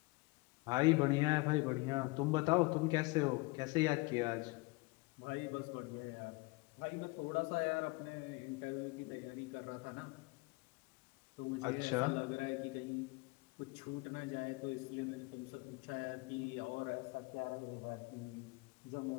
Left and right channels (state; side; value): quieter; right; 25.3 dB